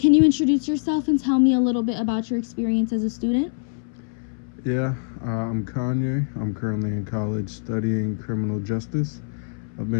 you introduce yourself and tell me a little bit about your experience as a student? I'm Kanye. I'm currently in college studying criminal justice. I've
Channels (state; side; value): silent; right; 63 dB below the other